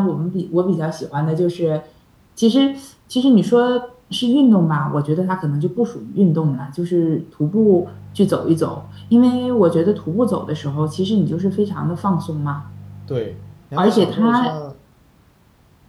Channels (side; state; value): both; identical; correlation 1.00